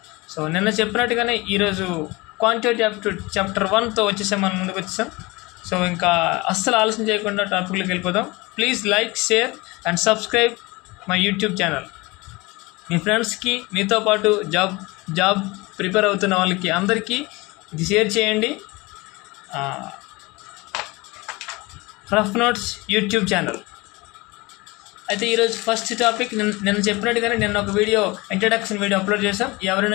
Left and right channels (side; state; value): right; quieter; 23.4 dB